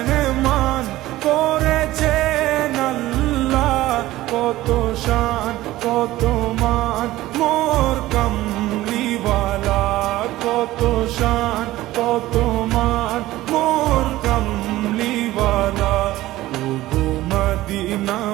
করেছেন আল্লাহ, কত শান কত মান মোর কমলিওয়ালা, কত শান কত মান মোর কমলিওয়ালা। ওগো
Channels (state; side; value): quieter; left; 16.4 dB